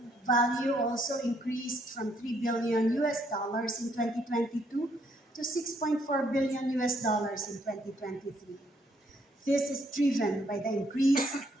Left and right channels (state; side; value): normal; both; correlation 0.70